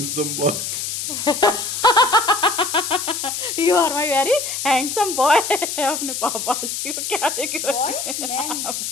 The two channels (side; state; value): left; noise; hiss, 4 dB below the sound